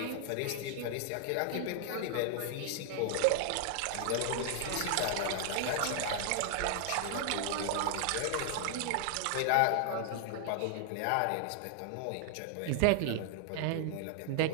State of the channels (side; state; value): both; different; correlation 0.00